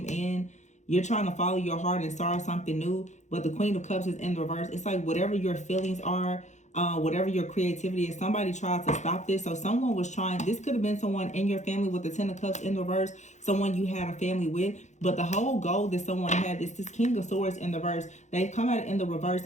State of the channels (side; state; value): right; late; 0.34 ms